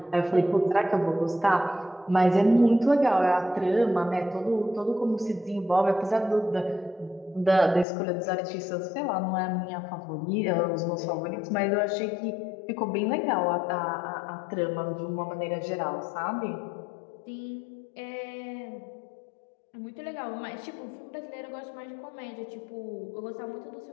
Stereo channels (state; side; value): drops out; right; at 7.9 s